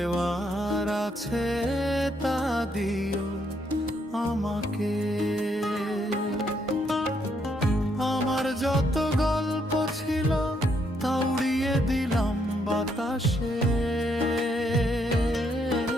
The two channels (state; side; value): normal; both; correlation 0.74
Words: আছে তা দিও আমাকে। আমার যত গল্প ছিল তা উড়িয়ে দিলাম বাতাসে,